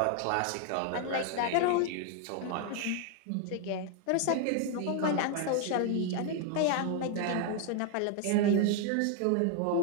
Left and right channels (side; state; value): both; different; correlation 0.00